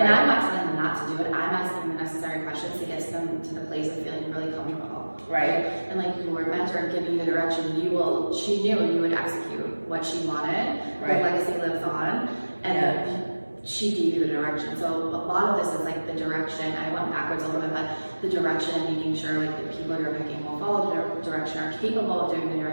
I'm not telling them not to do it. I'm asking the necessary questions to get them to the place of feeling really comfortable, right? And like your mentor giving you the direction, she knew you would execute what she wanted. Her legacy lives on, and she gave you the direction. So a lot of this is like the direction. I went backwards a little bit, but the direction and making sure like the people you're picking will follow the direction, are capable of doing the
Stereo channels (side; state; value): both; inverted; correlation -1.00